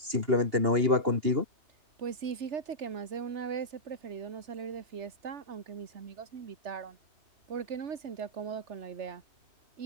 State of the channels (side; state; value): left; late; 3.4 ms